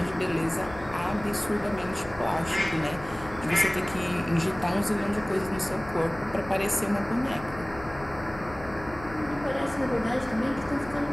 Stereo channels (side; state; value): left; noise; hum, 16 dB below the sound